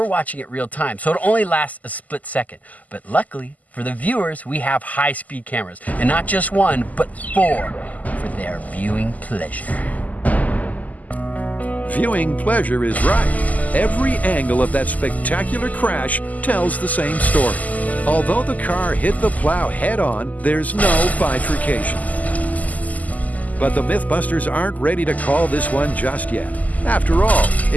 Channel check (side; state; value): right; late; 0.078 ms